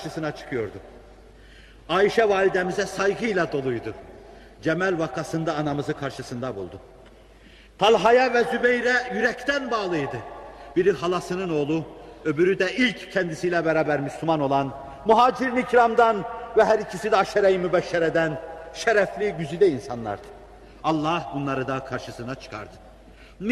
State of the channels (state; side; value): identical; both; correlation 1.00